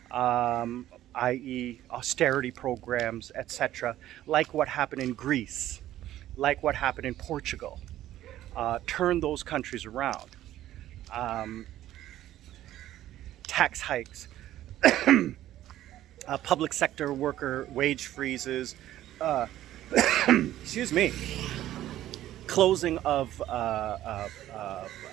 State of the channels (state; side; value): quieter; left; 13.4 dB